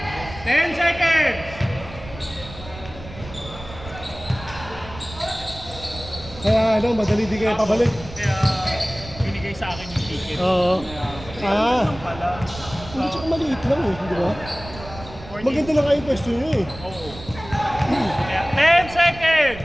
10 seconds! Kaya ano, madali di kayo pabalik. Kaya binigay sa akin yung ticket. Oo. Kaya, Ah. pala. Hindi, tsaka maliit lang eh, di ba? 40 Maganda na kayo yung pwesto nyo eh. Oo. Kaya, 10 seconds!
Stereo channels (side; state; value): right; noise; rumble, 15 dB below the sound